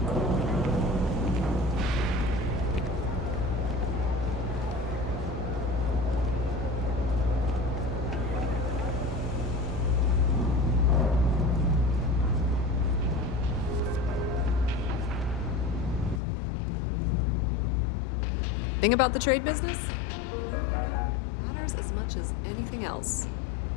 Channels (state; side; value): drops out; right; at 16.2 s